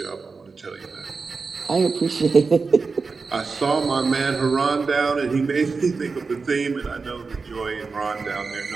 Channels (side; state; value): left; quieter; 4.5 dB